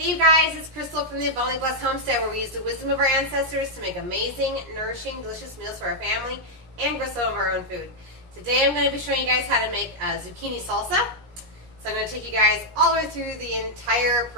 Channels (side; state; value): left; late; 17 ms